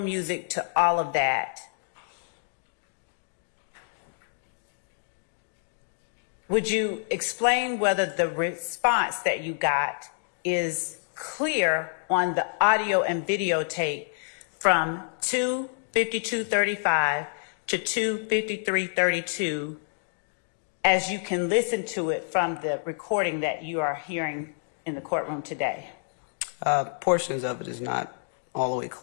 to all of that? Would you explain whether the response that you got is clear on the audio and videotape from 2:52:35 to 2:53:32, as you can listen to it from the recording that you are hearing in the courtroom today? Portions of it is not all the way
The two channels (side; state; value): right; silent; digital silence